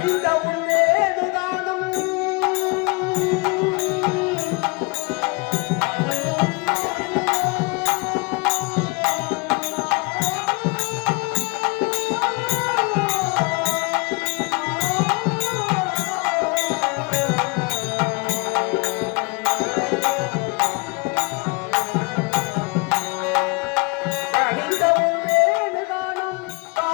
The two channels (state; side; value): quieter; right; 28.7 dB